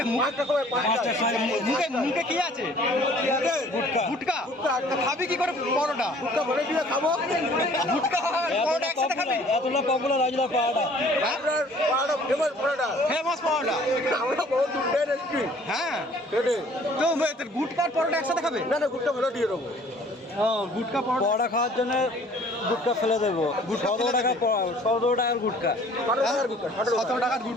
মুখে কি আছে? গুটকা। তো খাবি কি করে পরোটা? খাবো গুটকা পরোটা একসাথে খাবি? এতটা পপুলার আজলা পাওয়াটা ফেমাস পরোটা, ফেমাস পরোটা। আমরা বহুত দূর এসেছি। হ্যাঁ, কেটে তো গুটকা আর পরোটা একসাথে খাবে? না গুটকা ভালো দিয়ে দেবো। গুটকা পরোটা খাওয়ার জন্য গুটকা ফেলে দেবো। 17 টাকার গুটকা, 17 টাকার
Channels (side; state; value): both; normal; correlation 0.54